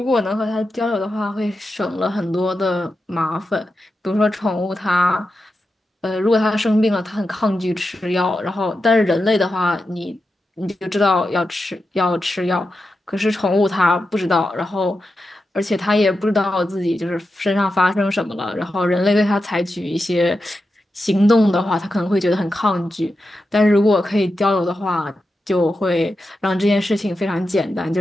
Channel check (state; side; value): normal; both; correlation 0.89